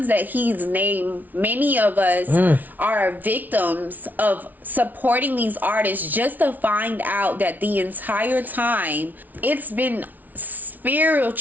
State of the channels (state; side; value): late; left; 0.080 ms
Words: that he's named. Many of us are victims of supporting these artists just to find out that the entire time it's been